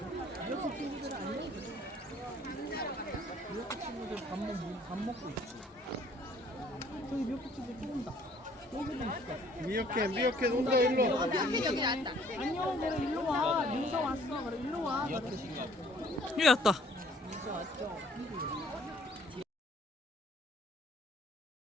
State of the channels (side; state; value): both; normal; correlation 0.58